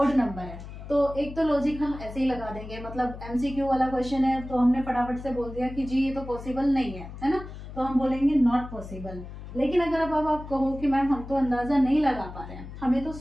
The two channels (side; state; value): left; noise; hum, 12 dB below the sound